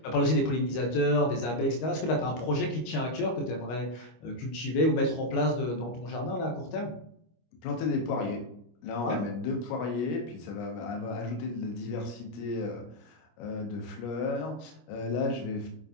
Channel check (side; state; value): right; late; 25 ms